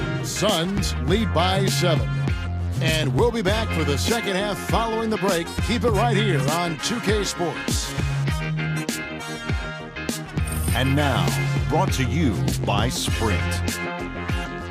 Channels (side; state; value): both; identical; correlation 1.00